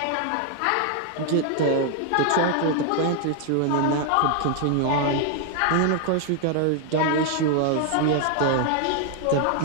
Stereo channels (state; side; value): different; both; correlation 0.00